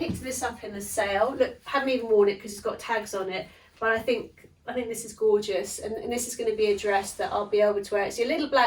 this up in the sale. Look, haven't even worn it because it's got tags on it, but I think this is gorgeous, and this is going to be a dress that I'll be able to wear. It's a little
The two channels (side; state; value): both; identical; correlation 1.00